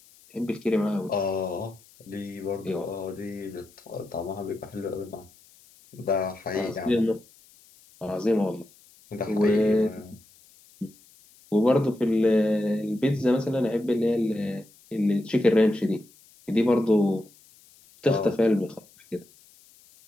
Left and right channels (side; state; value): left; noise; hiss, 27 dB below the sound